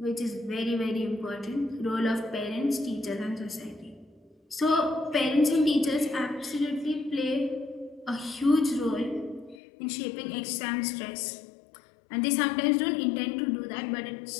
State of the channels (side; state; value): right; drops out; at 9.6 s